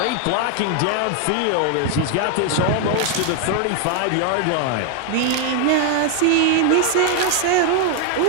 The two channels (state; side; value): different; both; correlation 0.00